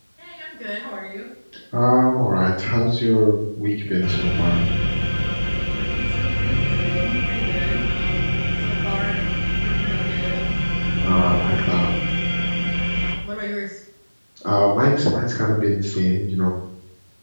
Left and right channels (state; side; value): inverted; both; correlation -1.00